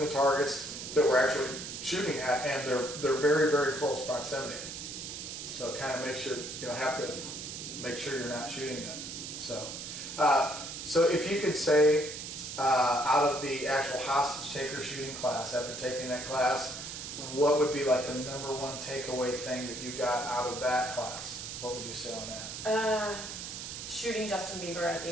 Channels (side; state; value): right; noise; hiss, 8 dB below the sound